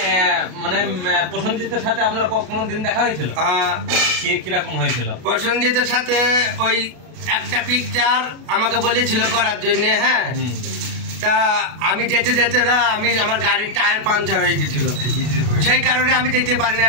মানে প্রসেনজিতের সাথে আপনার কোনোদিন দেখা হয়েছিল? কিরকম হয়েছিল? প্রসেনজিতের সাথে ওই একটা পিকচার আমাকে বলেছিল করার জন্য। হ্যাঁ, তা আমি যেতে যেতে না, আমার গাড়ির টায়ার পাঞ্চার হয়ে গেছিল, সেই কারণে আমি যেতে পারিনি।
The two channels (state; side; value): late; left; 32 ms